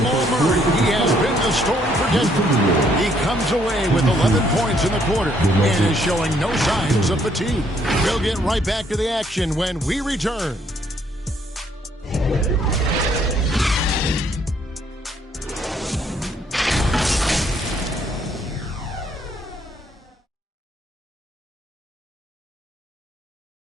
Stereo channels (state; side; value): normal; both; correlation 0.68